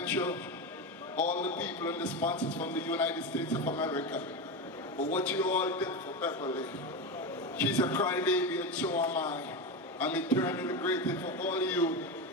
all the people and the sponsors from the United States of America, for what you all did for Beverly. She's a crybaby and so am I. I'm eternally grateful for all of you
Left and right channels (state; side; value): normal; both; correlation 0.18